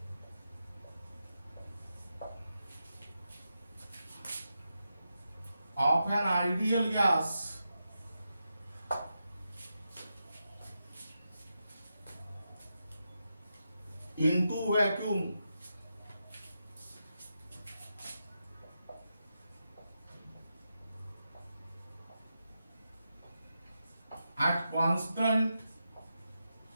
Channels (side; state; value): both; inverted; correlation -0.87